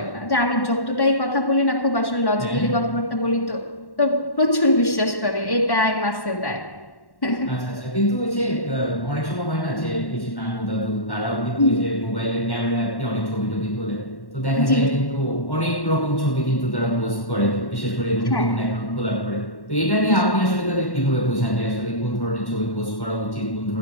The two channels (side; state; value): right; late; 1.1 ms